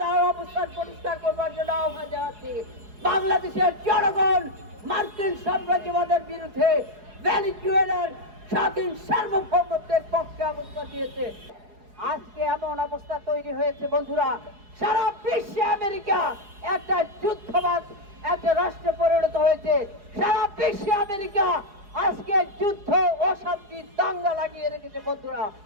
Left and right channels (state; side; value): late; left; 4.8 ms